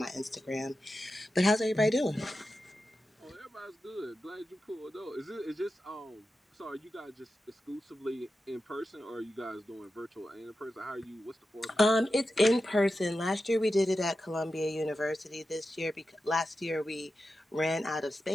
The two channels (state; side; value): normal; both; correlation 0.91